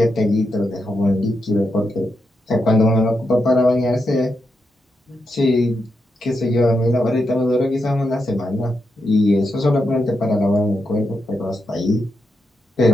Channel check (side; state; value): both; normal; correlation 0.84